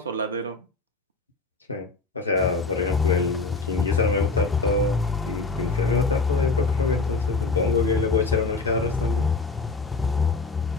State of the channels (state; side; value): quieter; right; 3.9 dB